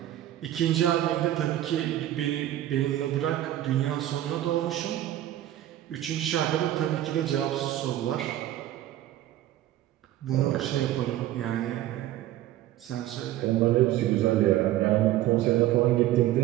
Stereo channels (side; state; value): left; quieter; 13.6 dB